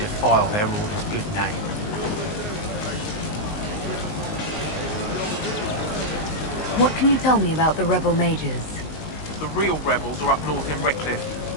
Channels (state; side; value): late; right; 19 ms